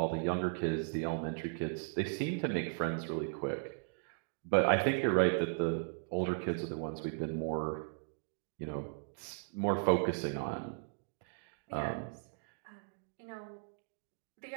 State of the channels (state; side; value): silent; left; digital silence